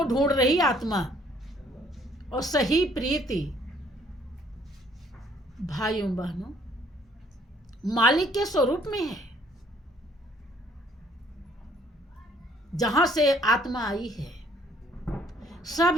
ढूंढ रही आत्मा, और सही प्रीति भाइयों बहनों मालिक के स्वरूप में है। जहां से आत्मा आई है,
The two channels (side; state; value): both; normal; correlation 0.62